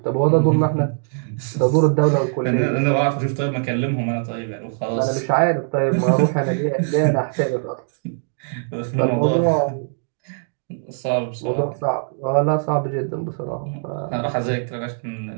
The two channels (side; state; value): left; silent; digital silence